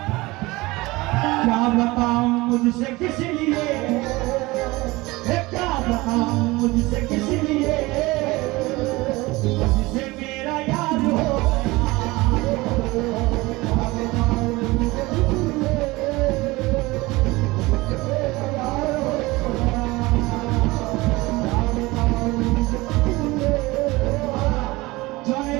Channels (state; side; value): quieter; left; 21.4 dB